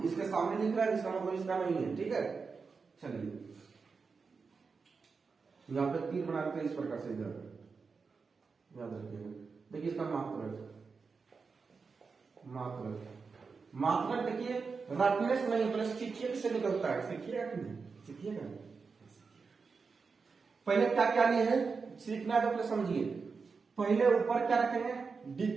इसके सामने लिख रहा है, इसका मतलब इसका नहीं है, ठीक है। चलिए यहाँ पे तीर बना के इस प्रकार से इधर याद रखिएगा। देखिए इसका मात्रक देखिए रटने से नहीं, पहले सीखिए से निकलता है। सीखिएगा कि नहीं? सीखिएगा। पहले क्या क्या लिए है, सीखना है तो पहले समझिए। पहले ऊपर क्या रखेंगे,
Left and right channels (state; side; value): quieter; left; 4.9 dB